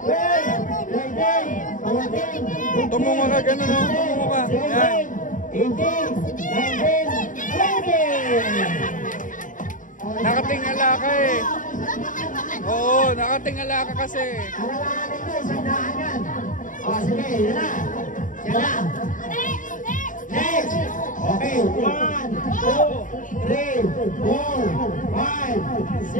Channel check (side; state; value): right; late; 0.38 ms